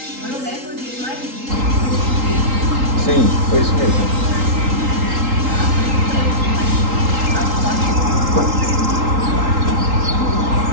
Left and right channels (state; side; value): late; left; 3.8 ms